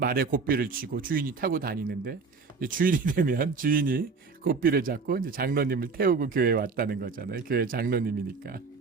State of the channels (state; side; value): quieter; left; 4.7 dB